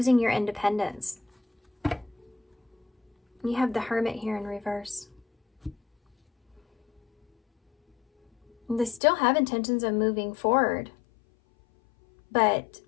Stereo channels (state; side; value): drops out; right; at 9.0 s